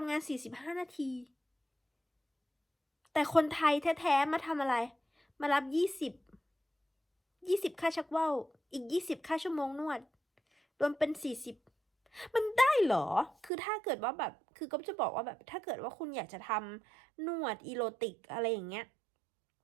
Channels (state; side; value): drops out; left; at 13.5 s